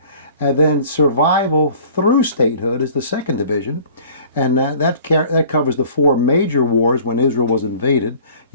and then Survival through Statehood is the second division. And that covers the 4 major wars when Israel was invaded,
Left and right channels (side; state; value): both; inverted; correlation -0.49